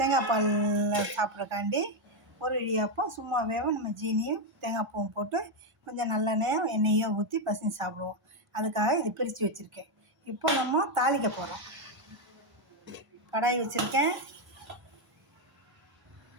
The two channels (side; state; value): left; late; 1.0 ms